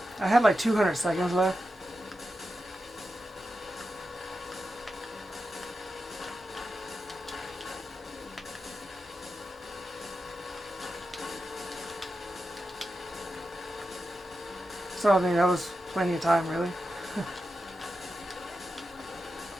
had like 200 seconds left. So I mean, that was plenty of time, really.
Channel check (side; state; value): both; normal; correlation 0.90